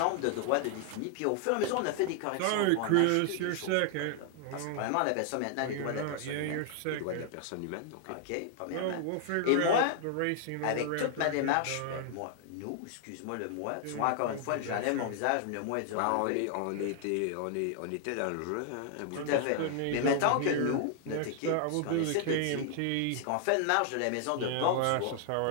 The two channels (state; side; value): different; both; correlation 0.00